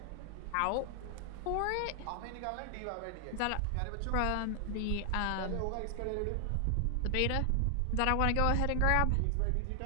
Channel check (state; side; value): different; both; correlation 0.00